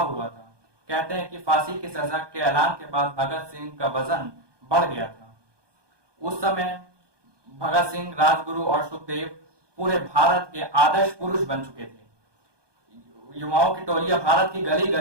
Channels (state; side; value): late; left; 1.2 ms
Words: था। कहते हैं कि फांसी की सजा के ऐलान के बाद भगत सिंह का वजन बढ़ गया था। उस समय भगत सिंह, राजगुरु और सुखदेव पूरे भारत के आदर्श पुरुष बन चुके थे। युवाओं की टोलियां भारत की गली